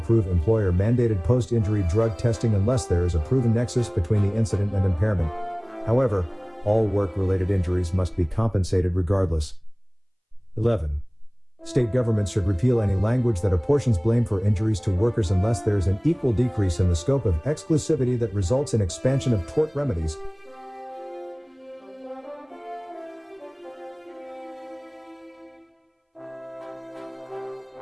employer-mandated post-injury drug testing unless there is a proven nexus between the incident and impairment. However, all work-related injuries must be compensated regardless. 11. State governments should repeal any language that apportions blame for injuries to workers unless there is an equal decrease in the scope of exclusivity that results in expansion of tort remedies.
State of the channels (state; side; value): identical; both; correlation 1.00